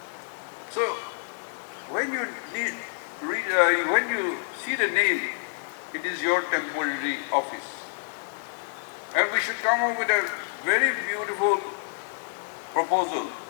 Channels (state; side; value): silent; right; 60 dB below the other